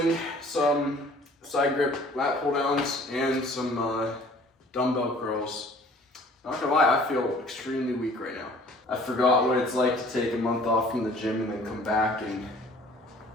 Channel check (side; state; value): both; normal; correlation 0.52